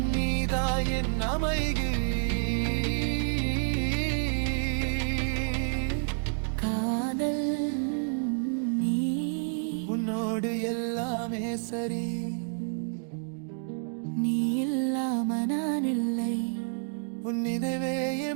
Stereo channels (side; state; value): left; silent; digital silence